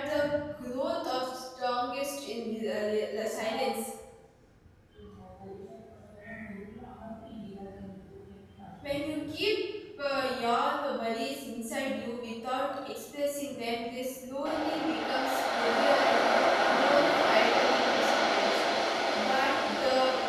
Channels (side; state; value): both; identical; correlation 1.00